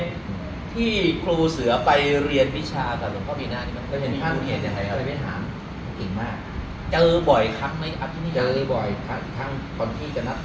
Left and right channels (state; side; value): identical; both; correlation 1.00